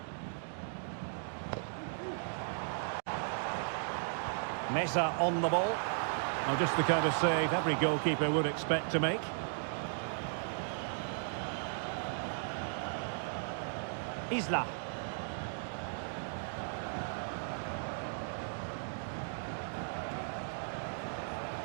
Mesa on the ball. Well, just the kind of save every goalkeeper would expect to make. Isla.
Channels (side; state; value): left; silent; digital silence